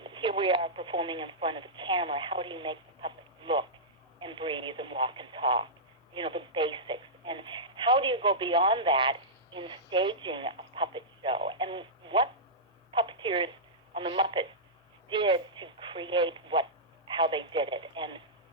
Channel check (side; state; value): both; normal; correlation -0.13